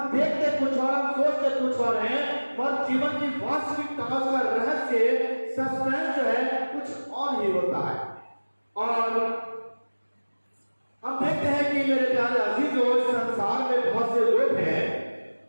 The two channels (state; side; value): inverted; both; correlation -1.00